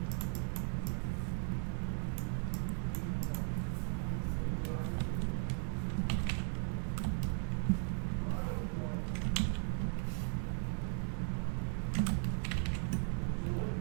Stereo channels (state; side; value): silent; left; 53 dB below the other